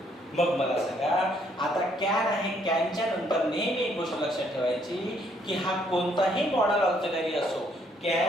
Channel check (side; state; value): both; normal; correlation 0.68